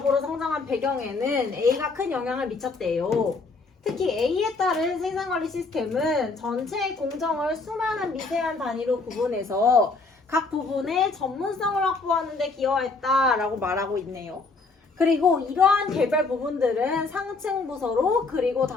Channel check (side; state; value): right; quieter; 3.9 dB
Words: 성장한 배경에는 A가 큰 영향을 미쳤대요. 특히 A에 따른 생산관리 시스템은 전체 공정을 수많은 미세한 단위로 구분해서 각 부분의 전문성을 확보하는 데 기여했다라고 말하고 있네요. 그리고 이러한 개별 부분들은 상층 부서로 그리고